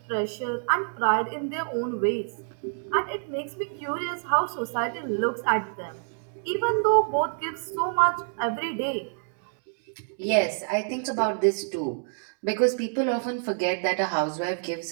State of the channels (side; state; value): left; silent; digital silence